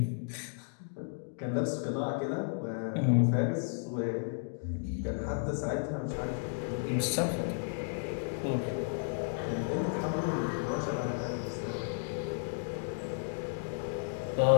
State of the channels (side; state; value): right; silent; digital silence